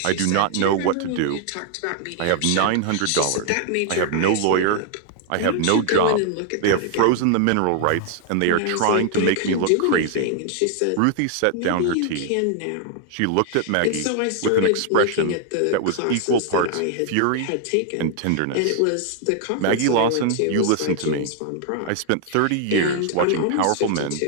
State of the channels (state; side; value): different; both; correlation 0.00